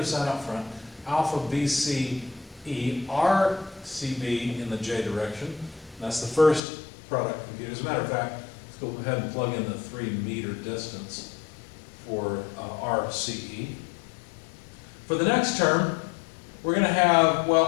sign up front. Alpha BCE, RCB in the j direction. That's the first product computed. As a matter of fact, let's go ahead and plug in the 3 meter distance for RCE. For the next term, we're going to have,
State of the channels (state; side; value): drops out; right; at 6.6 s